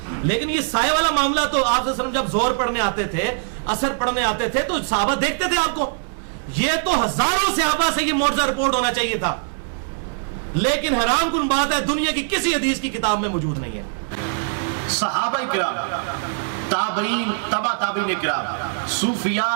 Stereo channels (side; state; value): left; silent; 64 dB below the other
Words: لیکن یہ سایہ والا معاملہ تو آپ صلی اللہ علیہ وسلم جب زہر پڑھنے آتے تھے، عصر پڑھنے آتے تھے تو صحابہ دیکھتے تھے آپ کو. یہ تو ہزاروں صحابہ سے یہ معجزہ رپورٹ ہونا چاہیے تھا، لیکن حیران کن بات ہے دنیا کی کسی حدیث کی کتاب میں موجود نہیں ہے. صحابہ کرام، تابعین، تبع تابعین کرام،